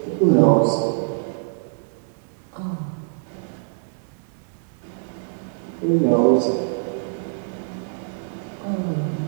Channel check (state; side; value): silent; left; digital silence